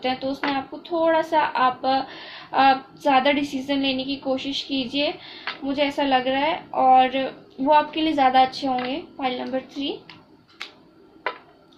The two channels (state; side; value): identical; both; correlation 1.00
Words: हैं, तो उसमें आपको थोड़ा सा आप ज़्यादा डिसीजन लेने की कोशिश कीजिए, मुझे ऐसा लग रहा है, और वो आपके लिए ज़्यादा अच्छे होंगे। फाइल नंबर 3,